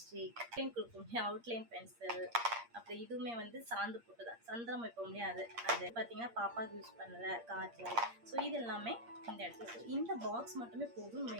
கொடுக்கும் அவுட்லைன் பென்சில், அப்புறம் இதுவுமே வந்து சாந்து போட்டு தான் சந்திரம் வைப்போம் இல்லையா அது பார்த்தீங்கன்னா பாப்பாவுக்கு யூஸ் பண்ணல காய்ச்சல். ஸோ இது எல்லாமே இந்த இடத்துல. இந்த பாக்ஸ் மட்டுமே போதும். நம்ம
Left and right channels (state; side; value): late; left; 8.6 ms